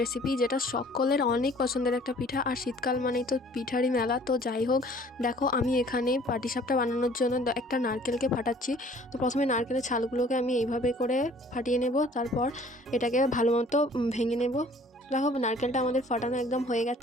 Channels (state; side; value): normal; both; correlation 0.53